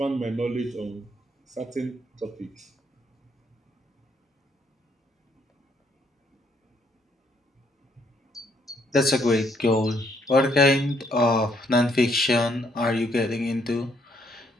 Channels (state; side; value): normal; both; correlation 0.70